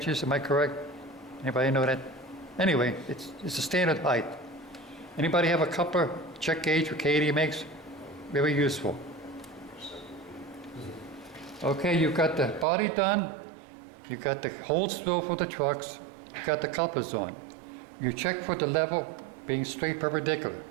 Am I correct? Anybody know that? Anyway, it's a standard height. Anybody have a coupler check gauge what Katie makes? Very useful. Okay, you've got the body done. You've got the holes drilled for the trucks. You've got the couplers on. You check for the level being straight perpendicular.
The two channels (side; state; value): left; drops out; at 12.7 s